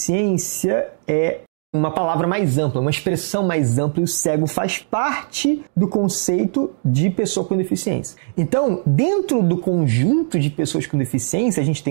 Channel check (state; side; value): silent; left; 64 dB below the other